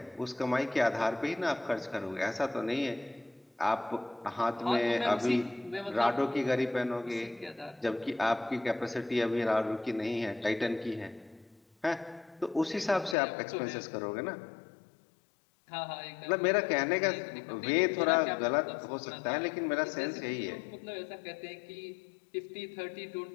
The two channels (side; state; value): right; drops out; at 13.2 s